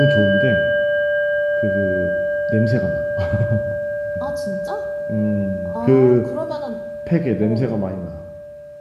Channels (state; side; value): identical; both; correlation 1.00